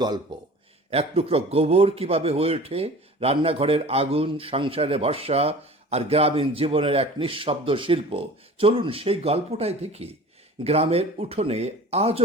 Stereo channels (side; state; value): both; normal; correlation 0.42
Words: গল্প। এক টুকরো গোবর কিভাবে হয়ে ওঠে রান্নাঘরের আগুন, সংসারে ভরসা, আর গ্রামীণ জীবনের এক নিঃশব্দ শিল্প। চলুন সেই গল্পটাই দেখি। গ্রামের উঠোনে